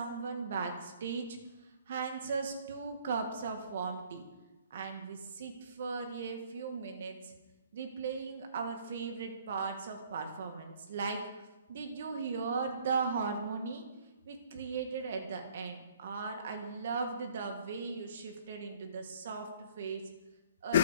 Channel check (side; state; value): both; inverted; correlation -0.58